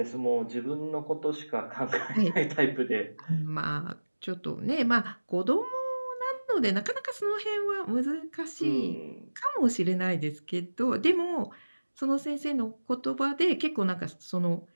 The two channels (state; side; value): inverted; both; correlation -1.00